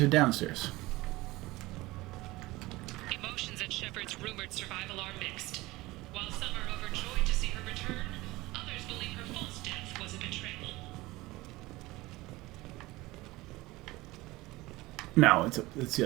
or downstairs? Emotions at Shepard's rumored survival are mixed. While some are overjoyed to see her return, others believe her false death was a betrayal. No, it's the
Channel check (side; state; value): left; quieter; 20.0 dB